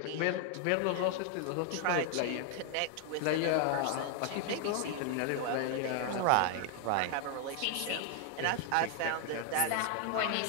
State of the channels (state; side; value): different; both; correlation 0.00